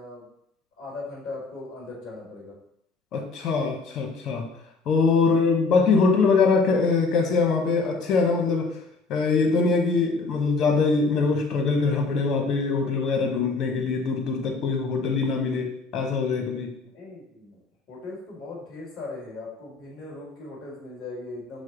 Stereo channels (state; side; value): quieter; right; 4.1 dB